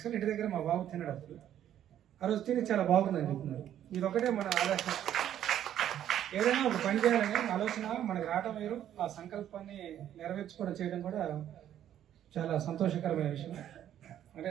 ఇంటి దగ్గర మా బాబు తిన్నాడు అప్పుడు. ఆ రోజు తిని చాలా బాగుందని చెప్తున్నారు. ఇది ఒకటే మన ఆలోచన, ఏదైనా ఒక పని చేయాలని ఆలోచన మనకు రావడం వేరు, ఆ సంకల్పాన్ని నెరవేర్చుకోవడం చేయడం కూడా చాలా సంతోషకరమైన విషయం. అంటే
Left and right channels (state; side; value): quieter; left; 10.9 dB